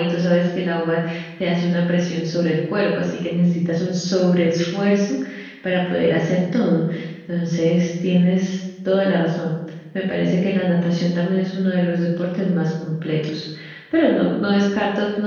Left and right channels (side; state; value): both; identical; correlation 1.00